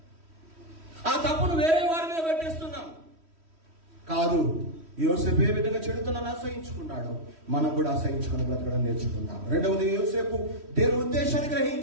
ఆ తప్పును వేరే వారి మీద పెట్టేస్తున్నాం. కాదు, యోసేపు ఏ విధంగా చెడుతనాన్ని అసహించుకున్నాడో మనం కూడా అసహించుకుని బ్రతకడం నేర్చుకుందాం. రెండవది, యోసేపు దేవుని ఉద్దేశాన్ని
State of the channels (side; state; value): left; late; 3.1 ms